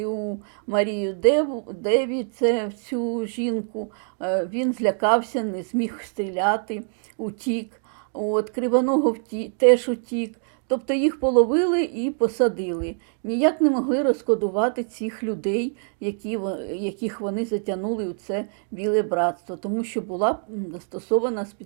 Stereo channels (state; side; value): silent; left; 58 dB below the other